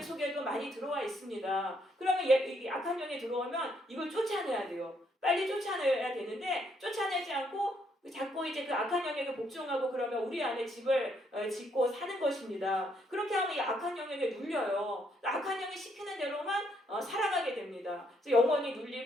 속에도 많이 들어와 있습니다. 그러면 이 악한 영이 들어오면 이걸 쫓아내야 돼요. 빨리 쫓아내야 되는데 쫓아내지 않고 자꾸 이제 그 악한 영에게 복종하고 그러면 우리 안에 집을 짓고 사는 것입니다. 그렇게 하면 이 악한 영에게 눌려요. 악한 영이 시키는 대로만 살아가게 됩니다. 그래서 영혼이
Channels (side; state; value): both; normal; correlation 0.72